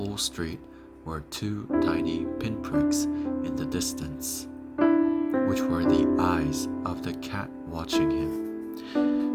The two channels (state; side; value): identical; both; correlation 1.00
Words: street were 2 tiny pinpricks in the distance, which were the eyes of the cat watching him.